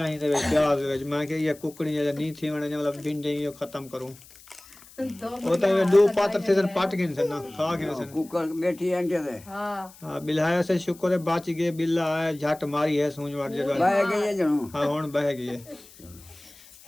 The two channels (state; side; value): noise; left; hiss, 22 dB below the sound